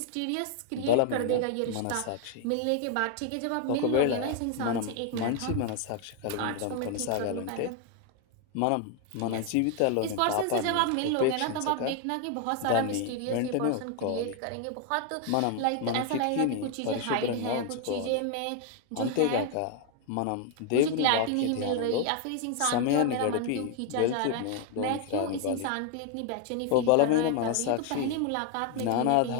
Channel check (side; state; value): both; different; correlation 0.01